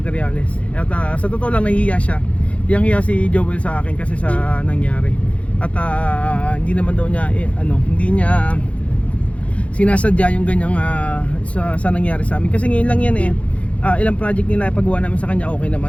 At sa totoo lang nahihiya siya. Hiya si Joel sa akin kasi sa nangyari. At hindi naman daw niya hindi niya sinasadya yung ganyang sa nangyari sa amin. Kasi ngayon lang yan ilang project nila paggawa namin sa kanya okay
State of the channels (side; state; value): right; late; 0.063 ms